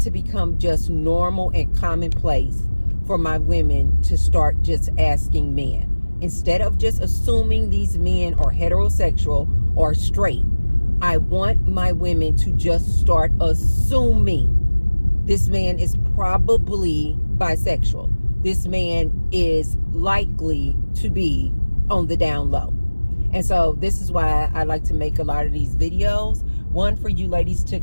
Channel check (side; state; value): both; inverted; correlation -1.00